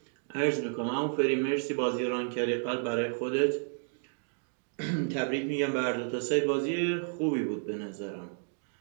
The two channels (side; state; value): left; silent; 57 dB below the other